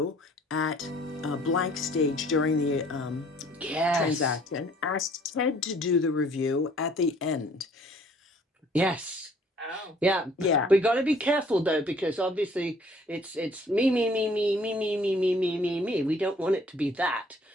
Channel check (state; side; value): normal; both; correlation 0.57